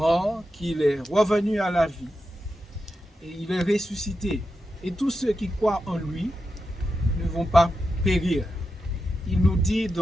qu'il est revenu à la vie et il est ressuscité. Et tous ceux qui croient en lui ne vont pas périr. Il nous dit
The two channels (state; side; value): normal; both; correlation 0.89